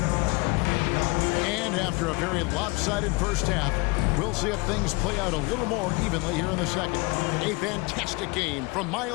After a very lopsided first half, we'll see if things play out a little more evenly here in the second. A fantastic game from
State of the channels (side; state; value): right; quieter; 26.2 dB